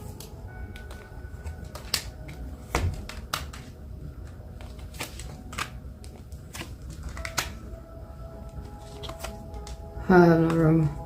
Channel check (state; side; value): identical; both; correlation 1.00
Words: I have no room.